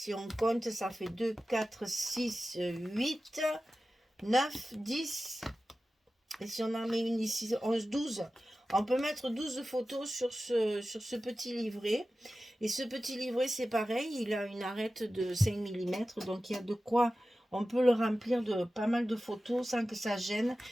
on compte, ça fait 2, 4, 6, 8, 9, 10. Et si on en met une ici, 11, 12. On peut mettre 12 photos sur ce petit livret. Et ce petit livret, c'est pareil, il a une arête de 5 mm, donc il y a de quoi, on peut le remplir de pas mal de photos sans que ça gêne.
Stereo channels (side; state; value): both; normal; correlation 0.95